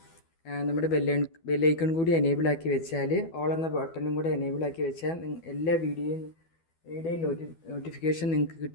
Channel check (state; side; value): late; right; 12 ms